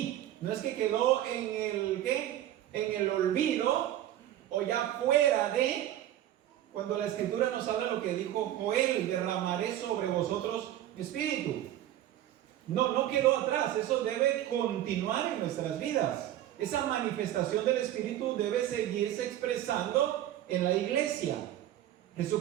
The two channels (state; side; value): quieter; left; 12.6 dB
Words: No es que quedó en el ¿qué? En el olvido o ya fuera de. Cuando la Escritura nos habla lo que dijo Joel: derramaré sobre vosotros mi Espíritu. No quedó atrás. Eso debe continuar en nuestras vidas. Esa manifestación del Espíritu debe seguirse expresando en la iglesia.